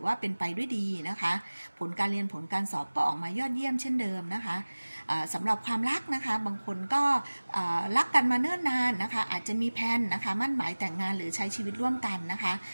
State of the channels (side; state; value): both; inverted; correlation -1.00